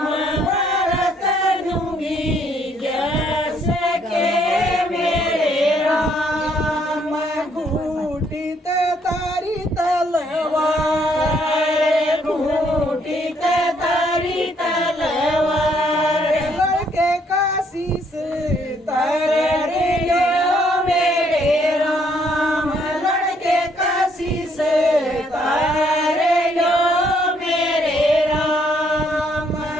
भरत दूंगी व्यास के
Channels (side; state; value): both; normal; correlation 0.68